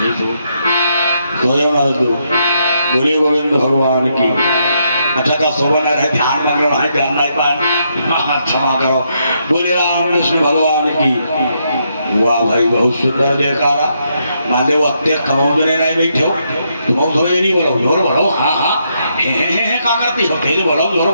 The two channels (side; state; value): both; inverted; correlation -0.78